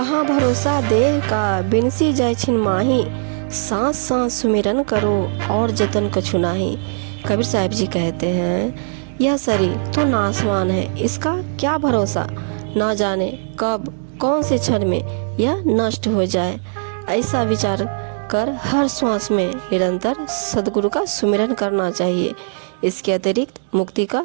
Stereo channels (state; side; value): silent; left; 66 dB below the other